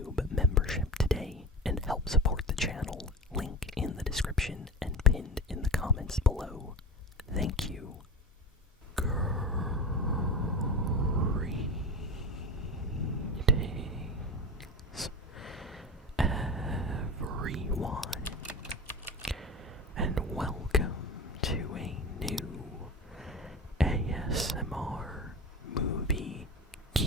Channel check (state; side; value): normal; both; correlation 0.29